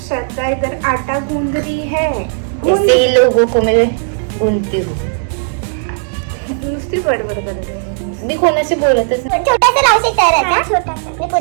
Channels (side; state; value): left; silent; digital silence